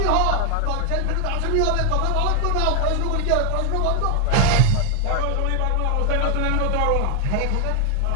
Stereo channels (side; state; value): both; different; correlation 0.00